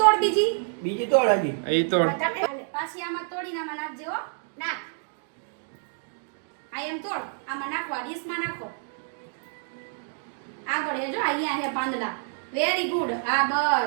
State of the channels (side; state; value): left; silent; digital silence